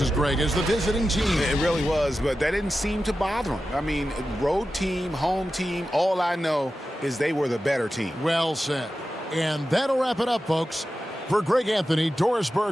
Greg, as the visiting team. It really was, but that didn't seem to bother them. I mean, road team, home team, all I know is they were the better team. Well said. And that'll wrap it up, folks. For Greg Anthony, Doris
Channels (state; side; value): normal; both; correlation 0.93